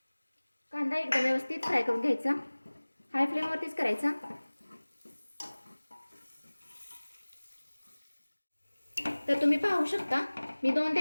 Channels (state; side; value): inverted; both; correlation -1.00